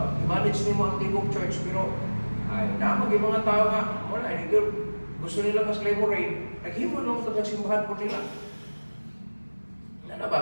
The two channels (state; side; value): inverted; both; correlation -1.00